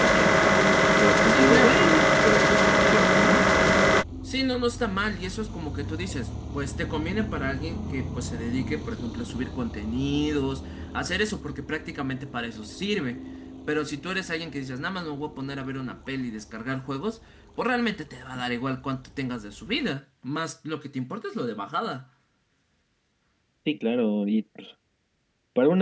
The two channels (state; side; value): identical; both; correlation 1.00